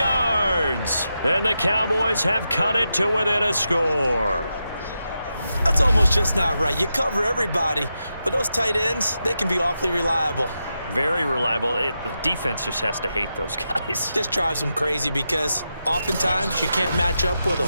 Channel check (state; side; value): inverted; both; correlation -0.87